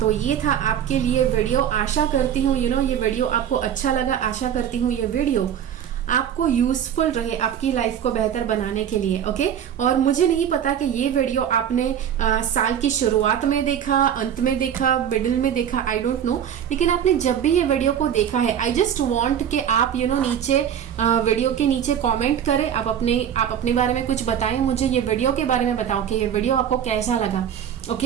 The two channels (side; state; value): left; quieter; 9.3 dB